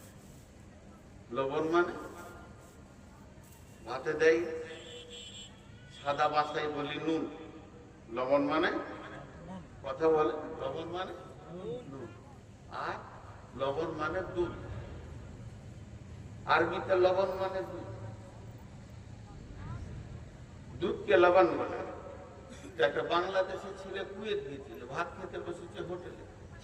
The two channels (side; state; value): both; identical; correlation 1.00